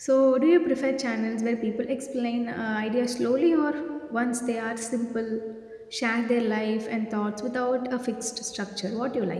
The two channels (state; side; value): identical; both; correlation 1.00